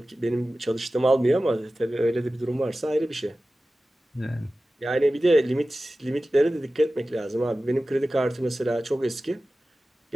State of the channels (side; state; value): both; normal; correlation 0.95